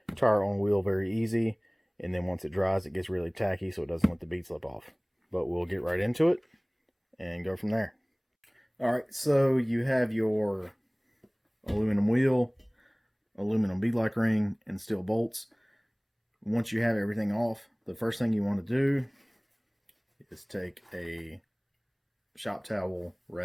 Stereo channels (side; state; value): both; identical; correlation 1.00